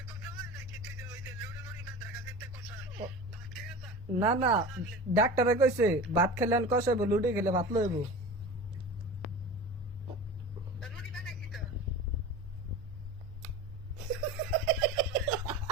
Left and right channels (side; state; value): both; normal; correlation 0.33